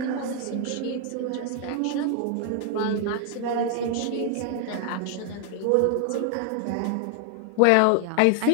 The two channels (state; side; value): different; both; correlation 0.00